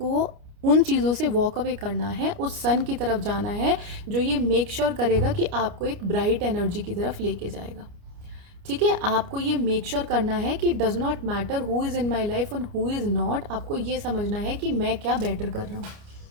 उन चीज़ों से वॉक अवे करना है, उस सन की तरफ जाना है जो ये मेक श्योर करेगा कि आपको एक ब्राइट एनर्जी की तरफ लेके जाएगा, ठीक है। आपको ये मेक श्योर करना है कि does not matter who is in my life and who is not. आपको ये समझना है कि मैं क्या बेटर कर रहा हूँ,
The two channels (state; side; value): late; left; 29 ms